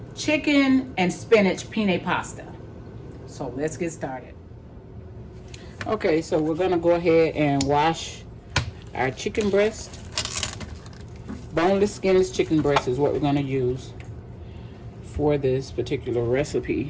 chicken and spinach penne pasta. So let's get started. Okay, so we're gonna go ahead and wash our chicken breast. Boneless, skinless chicken breast is what we're gonna use for this particular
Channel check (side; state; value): both; identical; correlation 1.00